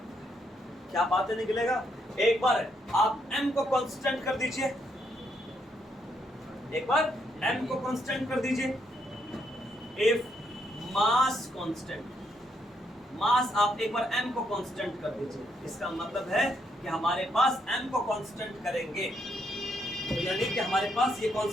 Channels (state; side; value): normal; both; correlation 0.76